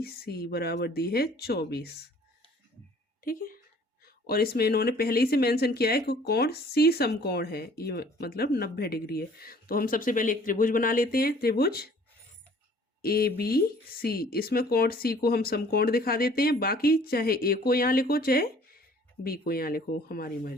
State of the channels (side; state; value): both; normal; correlation 0.54